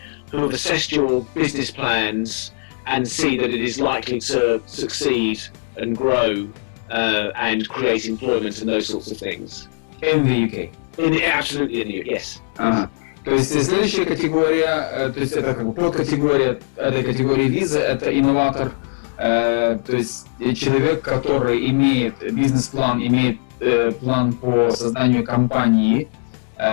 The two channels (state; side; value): silent; right; 63 dB below the other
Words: who have assessed your business plans and see that it is likely to succeed and grow and create employment and those sorts of things. In the UK? Absolutely in the UK, yes. То есть следующая категория, то есть это как бы подкатегория этой категории визы, это инноватор, то есть человек, который имеет бизнес-план, имеет план по созданию компании,